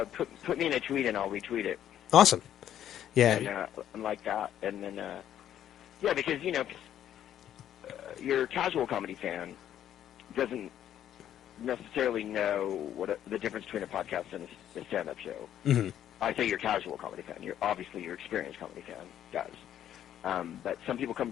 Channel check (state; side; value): quieter; right; 10.8 dB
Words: put me in a tweet and I'll retweet it. Awesome. Yeah. And like that, and then because your casual comedy fan doesn't necessarily know what the difference between a podcast and a stand-up show. Mm-hmm. I say your casual comedy fan. Obviously your experienced comedy fan does. But some people come